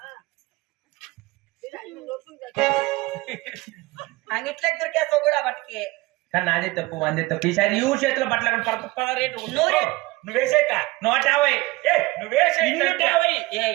అంగిట్లకి దొరికేస్తావు కూడా బట్టకి కానీ నాదే తప్పు అందే తప్పు ఈసారి ఈ ఊరు చేతిలో బట్టలు రేటు నువ్వేసేక 150 నువ్వేసే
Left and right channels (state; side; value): quieter; left; 21.2 dB